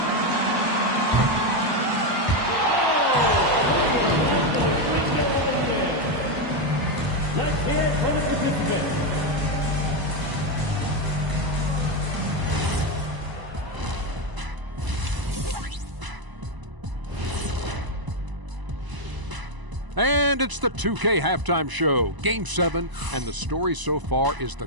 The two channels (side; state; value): left; late; 1.0 ms